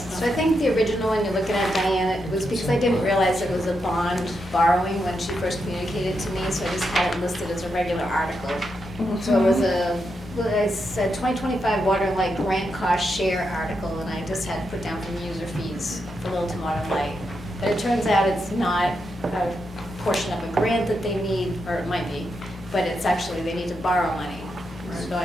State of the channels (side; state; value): both; normal; correlation 0.84